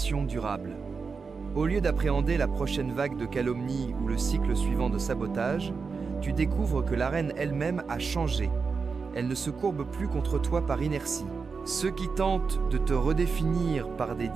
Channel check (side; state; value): left; quieter; 5.0 dB